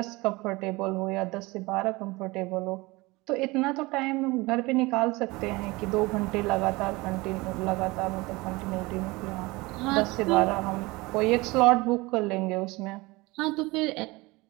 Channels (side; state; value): left; quieter; 22.6 dB